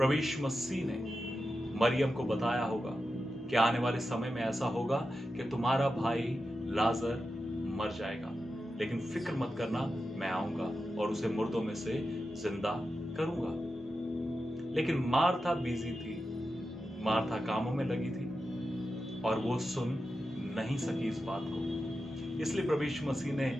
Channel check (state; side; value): normal; both; correlation 0.90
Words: यीशु मसीह ने मरियम को बताया होगा कि आने वाले समय में ऐसा होगा कि तुम्हारा भाई लाजर मर जाएगा, लेकिन फिक्र मत करना, मैं आऊंगा और उसे मुर्दों में से जिंदा करूंगा। लेकिन मार्था बिजी थी, मार्था कामों में लगी थी और वो सुन नहीं सकी इस बात को। इसलिए प्रभु यीशु मसीह ने